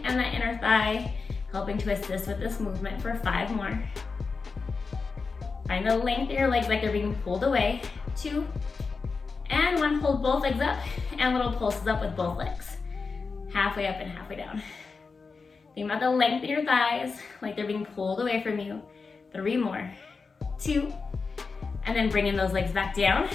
and that inner thigh, helping to assist with this movement for 5 more. Find the length of your legs like they're being pulled away. 2, and 1. Hold both legs up and little pulses up with both legs. Halfway up and halfway down. Think about the length of your thighs like they're being pulled away from you. 3 more. 2, and then bringing those legs back down.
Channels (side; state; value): right; quieter; 4.6 dB